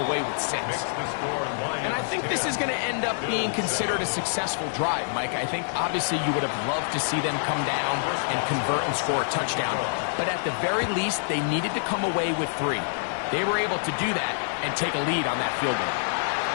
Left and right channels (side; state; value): right; silent; digital silence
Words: away with 6? And I think this is going to end up being considered a successful drive, Mike. I think obviously you would have loved to see them come down and convert and score a touchdown. But at the very least, they needed to come away with 3. They were able to do that and take a lead on that field goal.